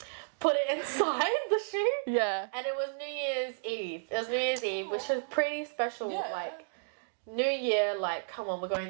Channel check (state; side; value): silent; left; digital silence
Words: put it inside the shoe. Yeah. And it was New Year's Eve. It was New Year's Eve, which was pretty special. Yeah. Like, New Year, like, come on, we're